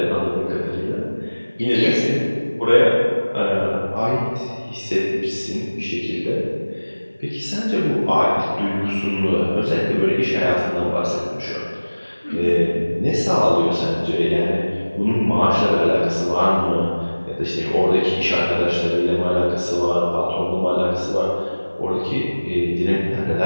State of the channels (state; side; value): inverted; both; correlation -1.00